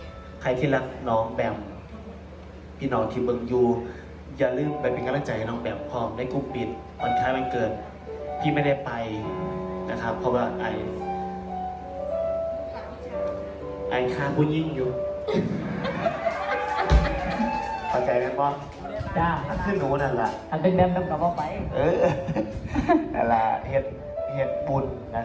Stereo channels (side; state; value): both; identical; correlation 1.00